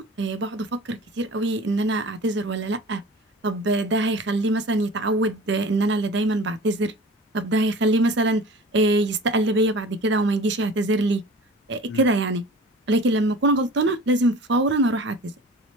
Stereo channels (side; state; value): both; normal; correlation 0.41